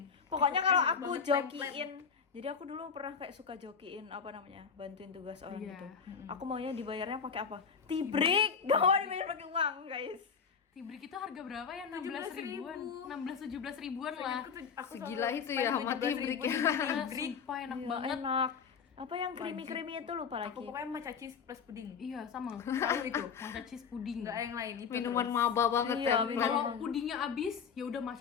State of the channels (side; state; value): right; quieter; 6.4 dB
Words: Pokoknya kalau Enak aku banget, jokiin, jadi aku dulu pernah kayak suka jokiin apa namanya, bantuin tugas orang Iya. gitu. Aku maunya dibayarnya pakai apa? Tibrik. Gak mau dibayar pakai uang, guys. Tibrik itu harga berapa ya? 16 ribuan. 16-17 ribuan lah. Aku Segila selalu itu ya spend sama 17.000 tibrik ya. Sumpah enak Iya, banget. enak. Apa yang creamy itu lupa lagi. Aku pokoknya matcha cheese plus pudding. Iya, sama. Selalu itu. Matcha cheese puding. Enggak ada yang lain itu. Minuman terus. maba banget Iya, ya. minuman. Kalau pudingnya habis, ya udah